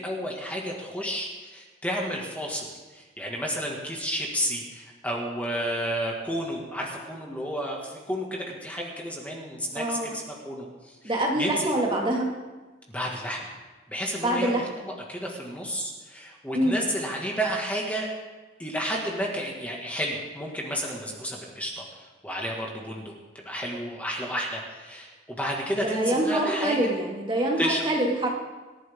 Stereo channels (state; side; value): normal; both; correlation 0.43